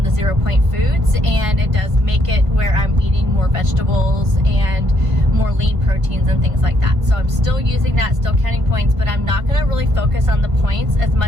the 0 point foods, and it does make it where I'm eating more vegetables and more lean proteins and things like that. So I'm still using that, still counting points, but I'm not going to really focus on the points as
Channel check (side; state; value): left; late; 1.5 ms